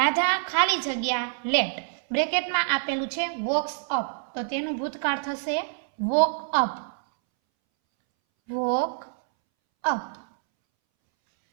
ખાલી જગ્યા લેટ બ્રેકેટમાં આપેલું છે વોક્સ અપ, તો તેનું ભૂતકાળ થશે વોક અપ, વોક અપ.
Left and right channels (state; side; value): silent; left; 61 dB below the other